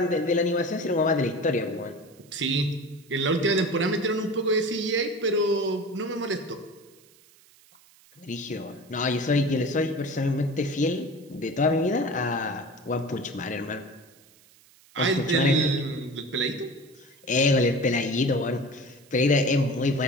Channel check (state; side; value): noise; right; hiss, 28 dB below the sound